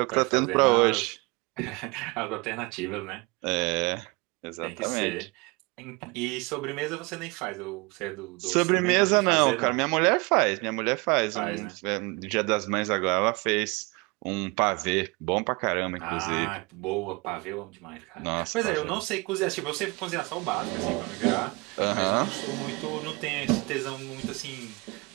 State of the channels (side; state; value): left; quieter; 26.3 dB